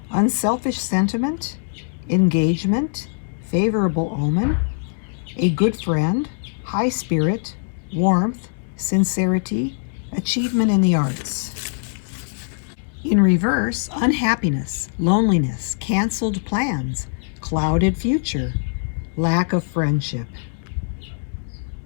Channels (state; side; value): silent; right; 64 dB below the other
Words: unselfish sentiment, engagement, favorable omen, a good friend, high spirit, warmth, sincerity, achievement in the arts. In reverse, unhappiness, loneliness, canceled plans, clouded future, lack of friendship.